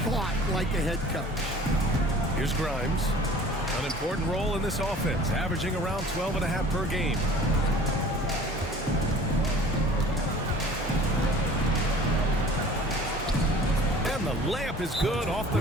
thought like a head coach. Here's Grimes. An important role in this offense, averaging around 12.5 per game. And the layup is good off the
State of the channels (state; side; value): normal; both; correlation 0.46